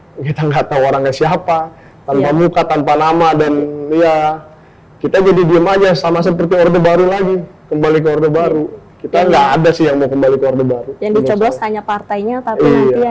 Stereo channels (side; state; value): both; identical; correlation 1.00